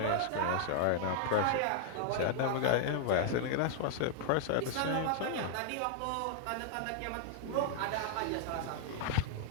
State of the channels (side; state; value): both; different; correlation -0.01